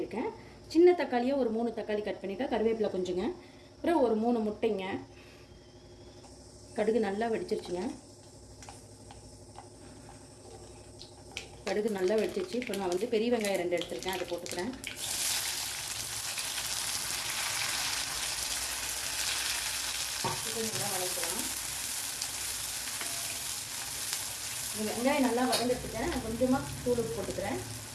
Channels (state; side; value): identical; both; correlation 1.00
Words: சின்ன தக்காளியாக ஒரு 3 தக்காளி கட் பண்ணியிருக்கேன். கருவேப்பிலை கொஞ்சங்க, அப்புறம் ஒரு 3 முட்டைங்க. கடுகு நல்லா வெடிச்சிருச்சுங்க. கடுகு நல்லா வெடிச்சிச்சு. இப்போ நான் வந்து பெரிய வெங்காயம் 2 எடுத்துருக்கேன், அதை போட்டுக்கிறேன். நல்லா வதக்கலாம். இந்த வெங்காயம் நல்லா வதங்கிட்டுருக்கேன். நான் கொஞ்சமாக தூள் போட்டுக்கிறேன்.